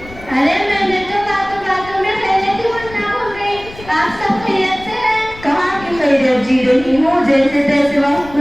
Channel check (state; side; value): noise; left; rumble, 18 dB below the sound